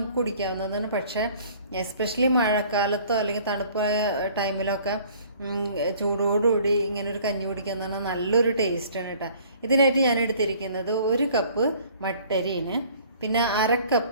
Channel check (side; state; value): both; inverted; correlation -0.53